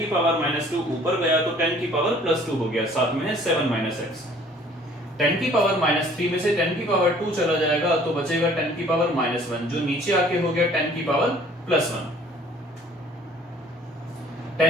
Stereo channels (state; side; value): normal; both; correlation 0.54